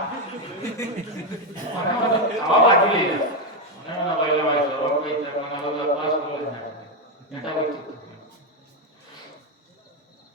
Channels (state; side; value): normal; both; correlation 0.06